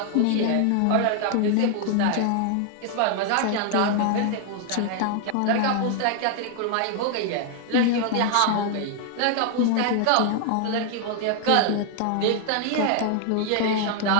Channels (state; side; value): different; both; correlation 0.00